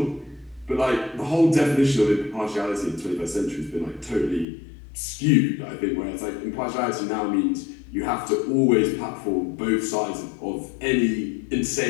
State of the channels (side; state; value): right; drops out; at 4.5 s